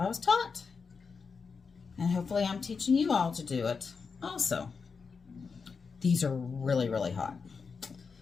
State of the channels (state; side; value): quieter; right; 5.2 dB